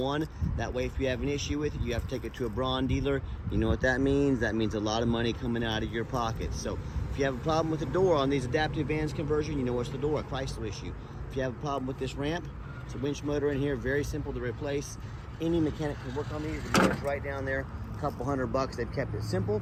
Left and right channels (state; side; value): identical; both; correlation 1.00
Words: That way, if you have an issue with it, you have to take it to a Braun dealer. You know what that means? That means a lot of money coming out of your pocket. So if you have a problem with the door on these adaptive vans conversion, you know it's the door, a Chrysler issue. If you have a problem with this ramp, it's a winch motor in here, very simple to replace. Any mechanic can work on these. The motor's right down there, a couple $100. They've kept it simple.